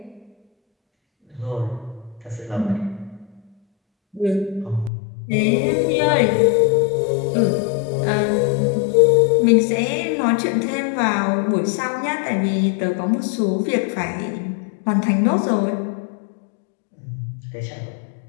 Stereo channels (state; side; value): drops out; right; at 4.9 s